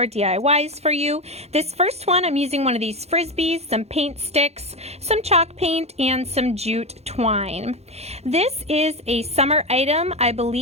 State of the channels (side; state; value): left; late; 0.31 ms